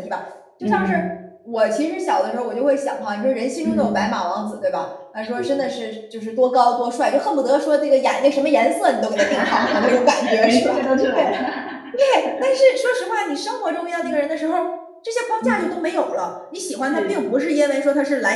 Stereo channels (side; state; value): both; identical; correlation 1.00